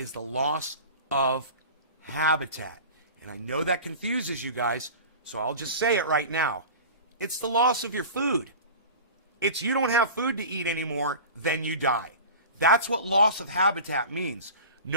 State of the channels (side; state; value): both; inverted; correlation -0.36